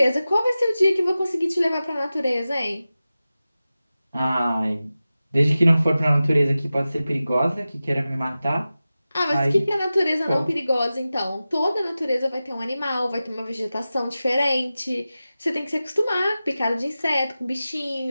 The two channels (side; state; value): both; inverted; correlation -0.95